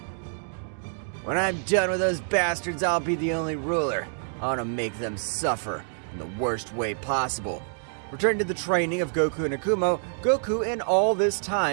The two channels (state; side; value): silent; left; digital silence